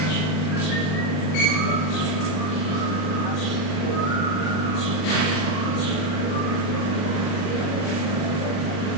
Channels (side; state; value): right; late; 40 ms